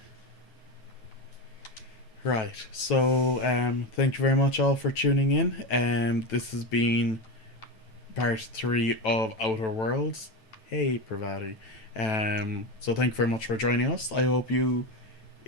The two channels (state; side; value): late; right; 9.1 ms